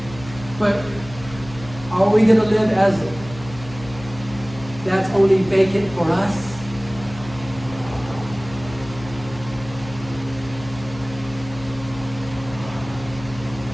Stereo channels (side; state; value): left; noise; hum, 15 dB below the sound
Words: But are we going to live as that's only vacant for us?